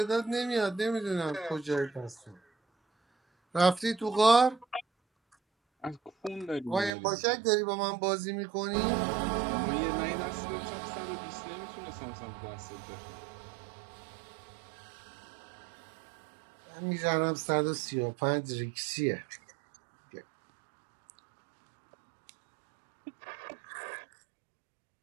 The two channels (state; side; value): drops out; left; at 6.9 s